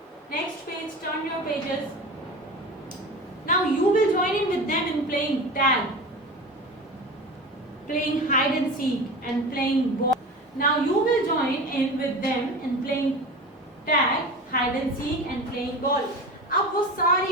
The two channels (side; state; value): both; normal; correlation 0.31